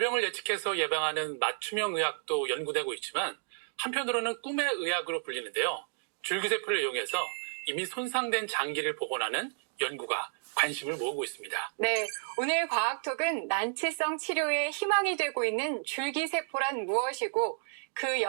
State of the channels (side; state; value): left; silent; digital silence